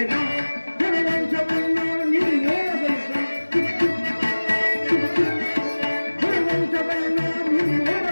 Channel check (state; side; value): inverted; both; correlation -1.00